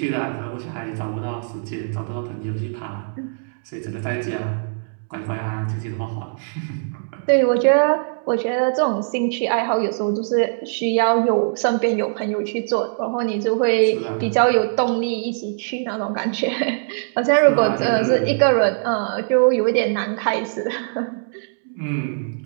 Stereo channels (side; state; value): left; silent; digital silence